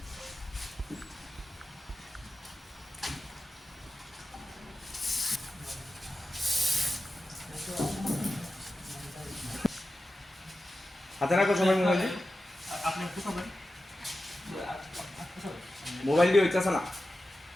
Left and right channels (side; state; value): both; normal; correlation 0.93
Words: হাতে রাখো সবাই মোবাইল মোবাইল দিয়ে হইতেছে না